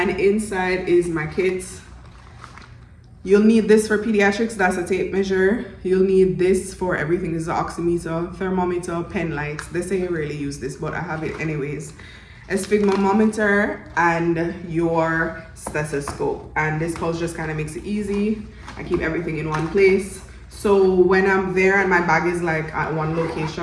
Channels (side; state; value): both; identical; correlation 1.00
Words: inside is my kit. You'll need this for pediatrics, that's a tape measure. You'll need this for everything. This is an oximeter, thermometer, pen light. They say you rarely use this, but I have it anyways. A sphygmomanometer and your stethoscope. And this pouch just kind of makes it easy. I keep everything in one place. So when I'm there and my bag is like at one